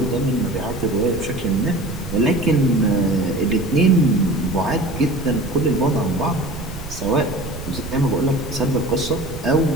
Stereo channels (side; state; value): right; noise; rumble, 11 dB below the sound